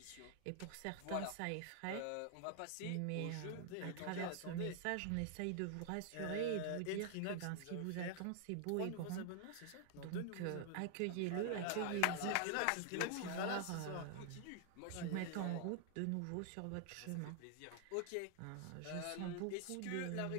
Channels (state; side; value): different; both; correlation 0.00